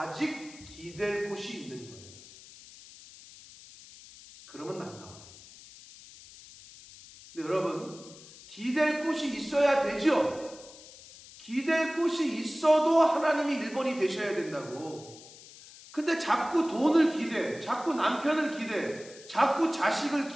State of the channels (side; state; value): left; noise; hiss, 19 dB below the sound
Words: 기댈 곳이 있는 거예요. 그러면 안 나와요. 근데 여러분, 기댈 곳이 있어야 되죠? 기댈 곳이 있어도 하나님이 1번이 되셔야 된다고. 근데 자꾸 돈을 기대, 자꾸 남편을 기대, 자꾸 자식을